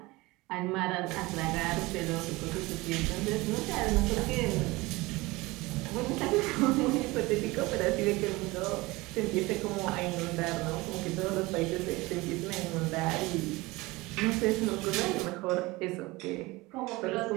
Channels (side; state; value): left; quieter; 21.8 dB